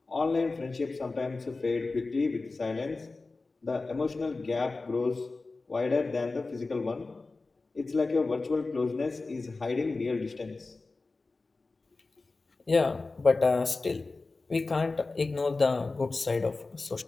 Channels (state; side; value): quieter; right; 3.6 dB